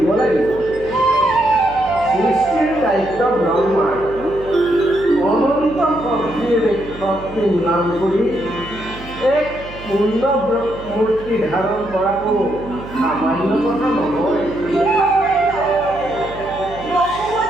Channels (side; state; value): right; noise; hum, 16 dB below the sound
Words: লাগিব। সৃষ্টিৰ দায়িত্ব ব্ৰহ্মাৰ অনন্ত শক্তি নাম কৰি এক পূৰ্ণ মূৰ্তি ধাৰণ কৰাটো সামান্য কথা নহয়।